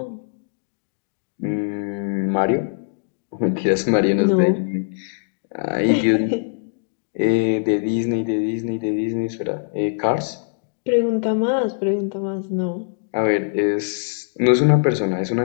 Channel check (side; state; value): right; silent; digital silence